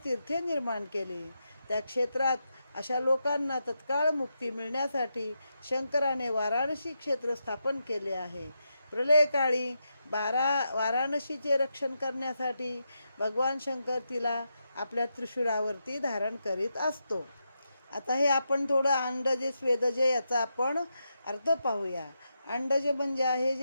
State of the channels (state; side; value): inverted; both; correlation -0.85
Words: तीर्थे निर्माण केली. त्या क्षेत्रात अशा लोकांना तत्काळ मुक्ती मिळण्यासाठी शंकराने वाराणसी क्षेत्र स्थापन केले आहे. प्रलयकाळी वाराणसीचे रक्षण करण्यासाठी भगवान शंकर तिला आपल्या त्रिशूळावरती धारण करीत असतो. आता हे आपण थोडं अंडजे स्वेदजे याचा आपण अर्थ पाहूया. अंडज म्हणजे आहे